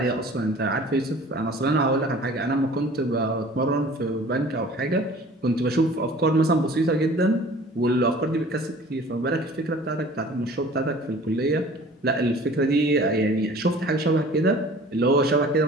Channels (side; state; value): both; normal; correlation 0.46